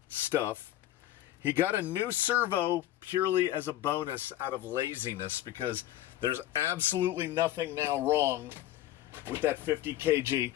stuff. He got a new servo purely as a bonus out of laziness because there's absolutely nothing now wrong with that 50 kg.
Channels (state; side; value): quieter; right; 13.9 dB